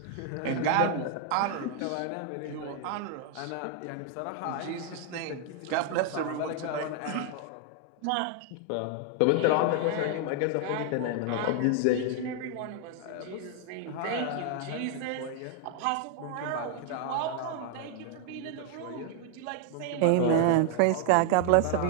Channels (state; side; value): different; both; correlation 0.00